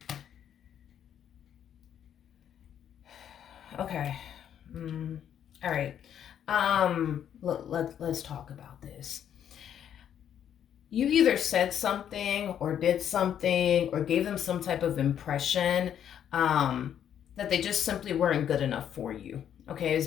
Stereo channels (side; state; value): right; quieter; 9.5 dB